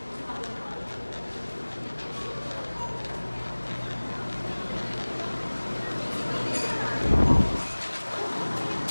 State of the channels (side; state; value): both; inverted; correlation -1.00